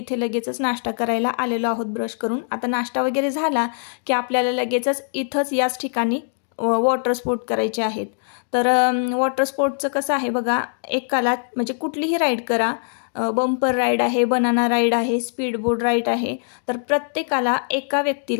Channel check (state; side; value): silent; right; 64 dB below the other